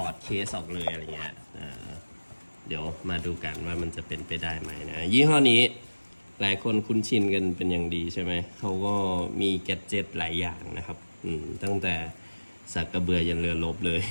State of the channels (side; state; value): both; inverted; correlation -1.00